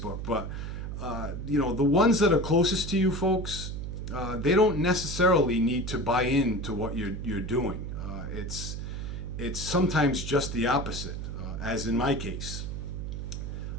but the ones that are closest to you folks, they don't necessarily need to buy into what you're doing. It's sometimes just the opposite, as in my case.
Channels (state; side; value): noise; right; hum, 6 dB below the sound